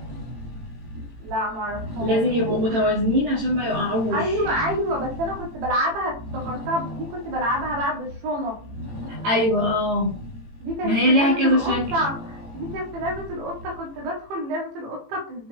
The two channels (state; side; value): late; left; 18 ms